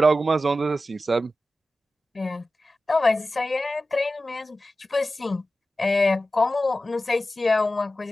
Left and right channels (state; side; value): normal; both; correlation 0.94